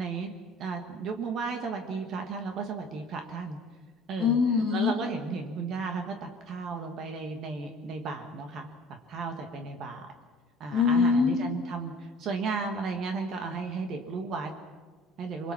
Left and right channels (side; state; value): both; normal; correlation 0.49